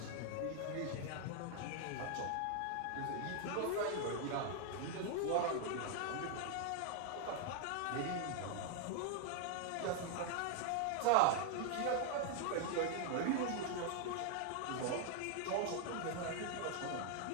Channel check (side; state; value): both; different; correlation 0.00